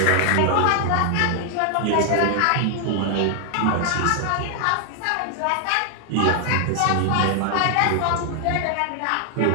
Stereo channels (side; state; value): both; different; correlation 0.00